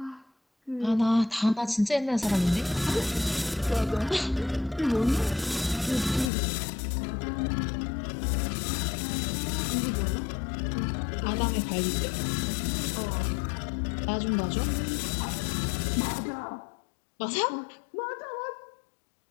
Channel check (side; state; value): right; drops out; at 6.3 s